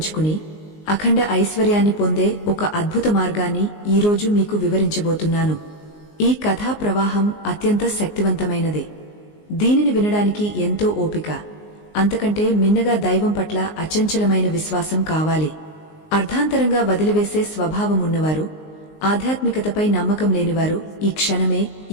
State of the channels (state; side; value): late; right; 19 ms